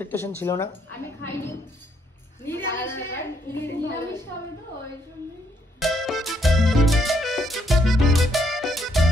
ছিল না। আমি খাইনি, নিরামিষ খাবে তো ওই জন্য।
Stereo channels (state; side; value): normal; both; correlation 0.71